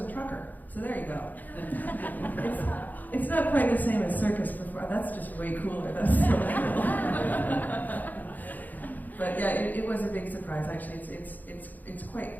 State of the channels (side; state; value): right; late; 0.083 ms